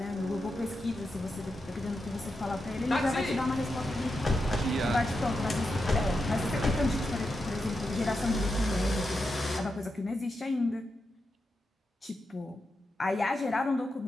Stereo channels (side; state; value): both; normal; correlation 0.87